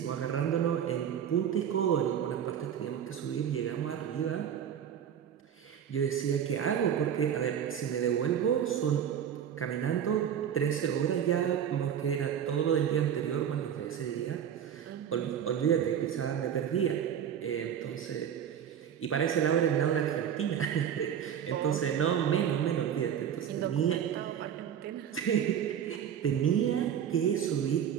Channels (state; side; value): quieter; left; 9.0 dB